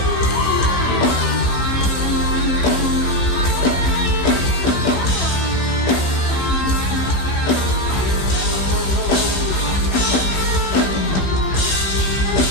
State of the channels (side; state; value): right; late; 16 ms